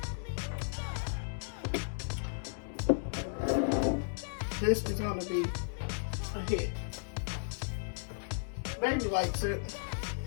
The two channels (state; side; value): silent; right; digital silence